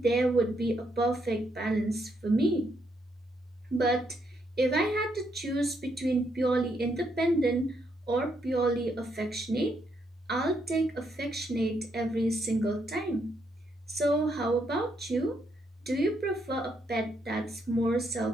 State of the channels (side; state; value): both; normal; correlation 0.76